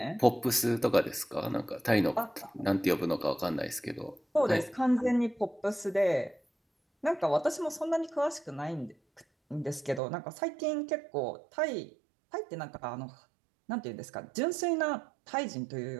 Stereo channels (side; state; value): left; drops out; at 10.0 s